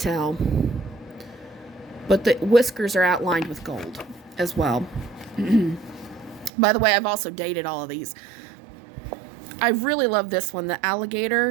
but the whiskers are outlined with gold as well. By the way, I've also dated all of these. I really love this one, the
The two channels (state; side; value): drops out; left; at 6.5 s